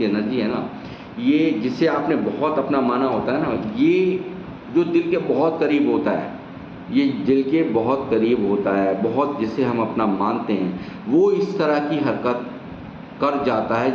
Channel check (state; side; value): identical; both; correlation 1.00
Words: एनर्जी है ना, ये जिसे आपने बहुत अपना माना होता है ना, ये जो दिल के बहुत करीब होता है, ये दिल के बहुत करीब होता है, बहुत जिसे हम अपना मानते हैं, वो इस तरह की हरकत कर जाता है